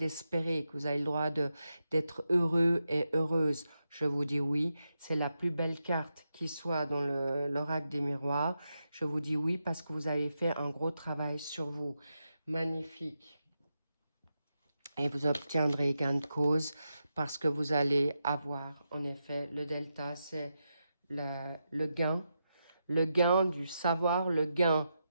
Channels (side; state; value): both; inverted; correlation -0.87